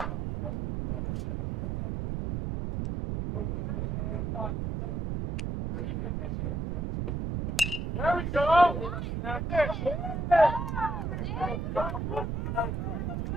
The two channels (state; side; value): noise; right; rumble, 2 dB below the sound